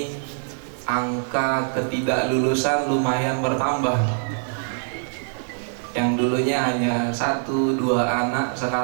angka ketidaklulusan lumayan bertambah. Yang dulunya hanya 1-2 anak,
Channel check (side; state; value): left; silent; 63 dB below the other